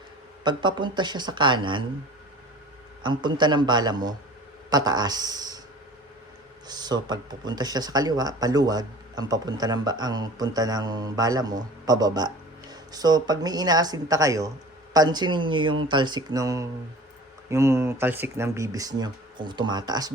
pag papunta siya sa kanan, ang punta ng bala mo, pataas. So, pag pupunta siya sa kaliwa, paluwag, ang punta ng bala mo, pababa. So, pag may inaasinta kayo, pansinin niyo yung talsik ng bibis niyo. Kung tumataas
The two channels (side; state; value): both; normal; correlation 0.42